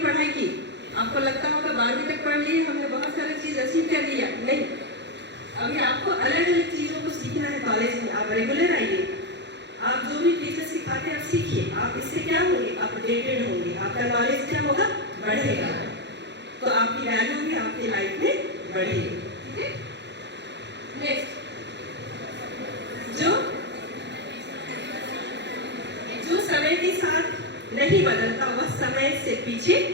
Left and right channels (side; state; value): left; late; 0.51 ms